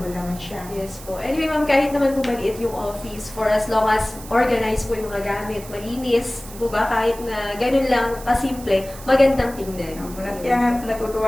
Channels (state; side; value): noise; right; hiss, 16 dB below the sound